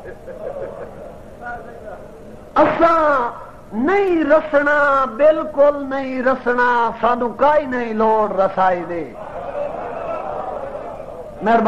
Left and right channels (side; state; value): both; identical; correlation 1.00